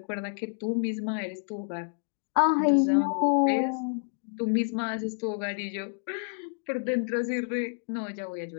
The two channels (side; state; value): right; silent; digital silence